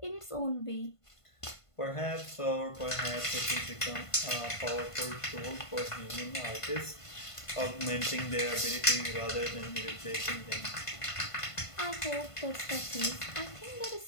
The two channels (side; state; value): right; late; 1.5 ms